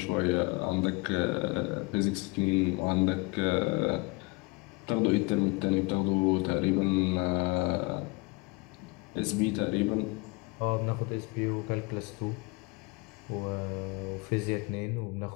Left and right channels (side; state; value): right; quieter; 27.5 dB